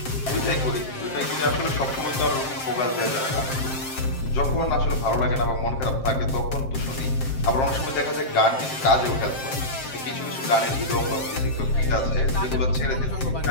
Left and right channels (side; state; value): right; late; 7.6 ms